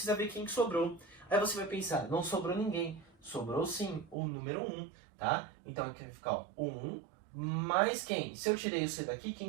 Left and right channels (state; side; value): drops out; left; at 4.2 s